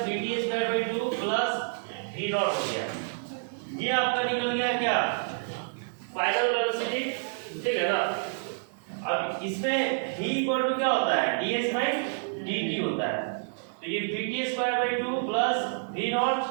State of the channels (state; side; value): silent; left; digital silence